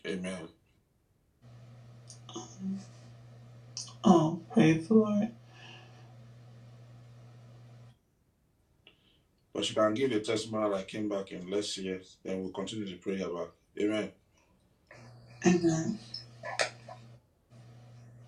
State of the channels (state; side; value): identical; both; correlation 1.00